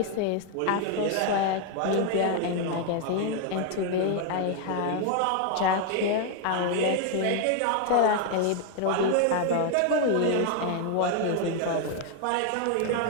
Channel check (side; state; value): both; different; correlation 0.00